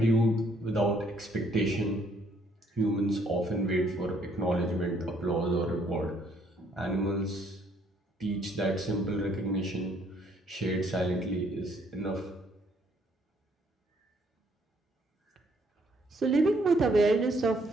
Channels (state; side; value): normal; both; correlation 0.67